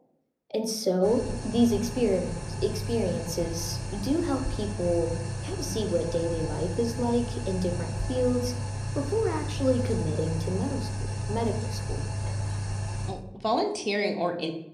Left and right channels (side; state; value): both; identical; correlation 1.00